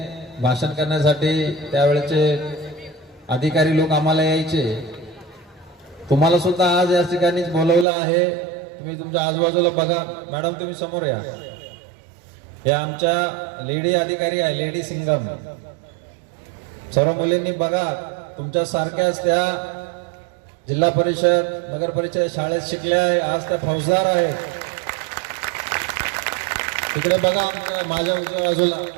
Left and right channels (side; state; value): left; drops out; at 7.9 s